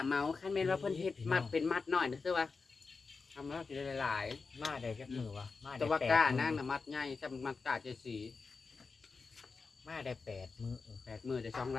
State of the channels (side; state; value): right; quieter; 4.5 dB